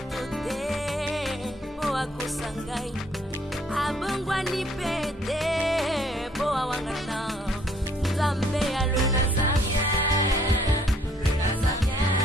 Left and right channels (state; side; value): normal; both; correlation 0.63